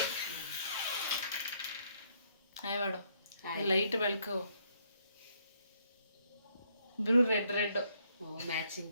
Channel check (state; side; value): inverted; both; correlation -0.71